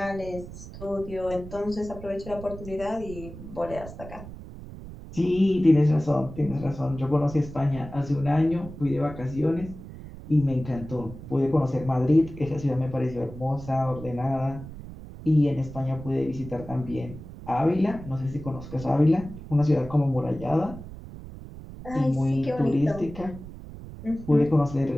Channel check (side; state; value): right; noise; rumble, 13 dB below the sound